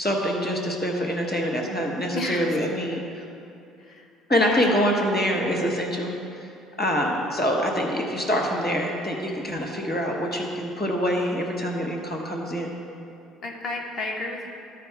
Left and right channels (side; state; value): both; normal; correlation 0.58